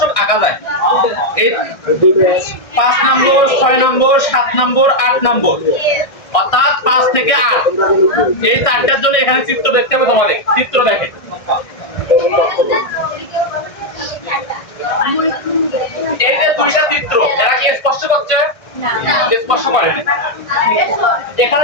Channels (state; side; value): late; right; 1.6 ms